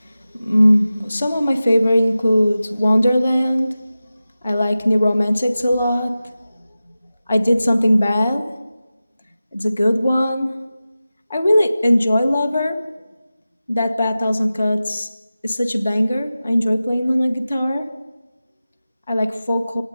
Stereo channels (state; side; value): inverted; both; correlation -0.95